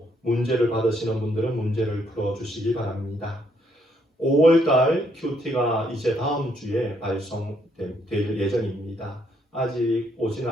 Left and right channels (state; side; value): normal; both; correlation 0.72